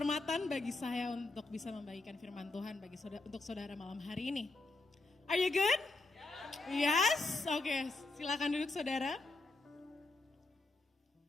bagi saya untuk bisa membagikan firman Tuhan untuk saudara malam hari ini. Are you good? Yes? Oke, silakan duduk saudara.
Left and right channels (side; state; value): right; quieter; 3.2 dB